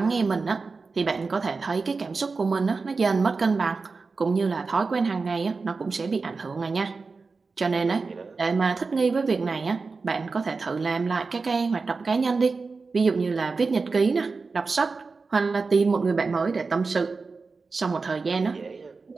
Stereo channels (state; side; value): quieter; left; 4.3 dB